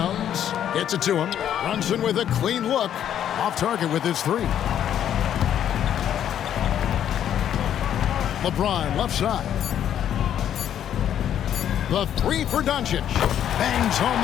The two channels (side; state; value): right; quieter; 10.1 dB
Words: Gets it to him. Brunson with a clean look. Off target with his three. LeBron left side. The three for Doncic. Bangs home